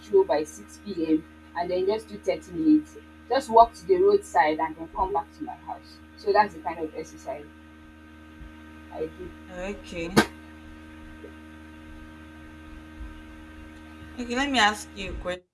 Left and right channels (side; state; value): both; identical; correlation 1.00